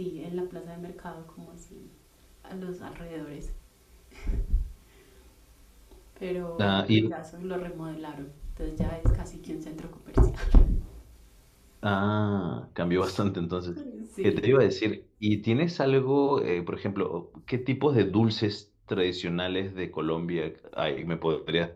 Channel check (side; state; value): both; identical; correlation 1.00